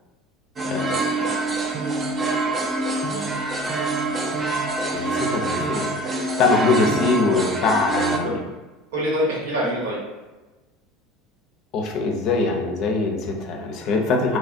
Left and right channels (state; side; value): normal; both; correlation 0.42